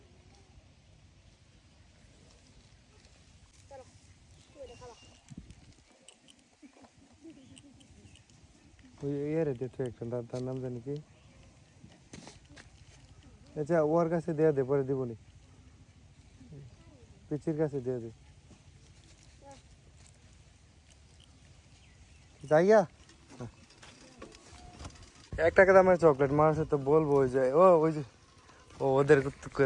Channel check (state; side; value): identical; both; correlation 1.00